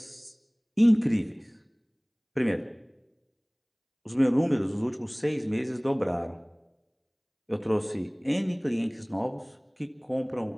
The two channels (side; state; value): both; identical; correlation 1.00